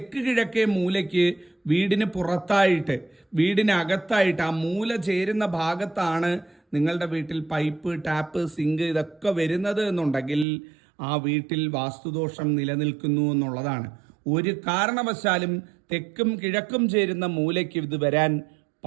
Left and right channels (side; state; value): left; drops out; at 10.5 s